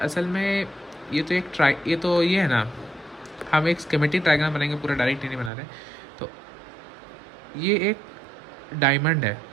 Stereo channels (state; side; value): drops out; left; at 5.5 s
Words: में ये है ना, हम एक स्कीमेटिक डायग्राम बनाएंगे, पूरा डायरेक्ट नहीं बना रहे। तो ये एक डायमंड है,